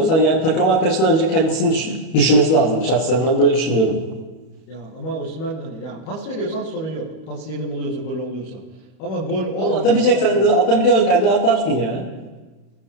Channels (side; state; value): right; late; 32 ms